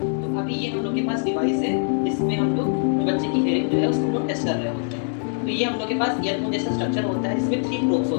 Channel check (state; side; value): silent; right; digital silence